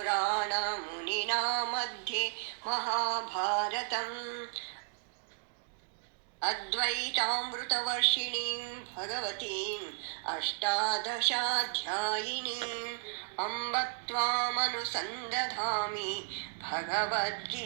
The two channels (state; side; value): silent; left; digital silence